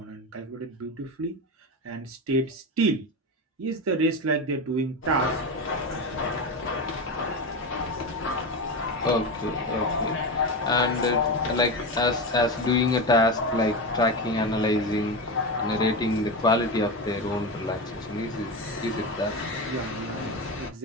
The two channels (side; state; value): both; normal; correlation 0.18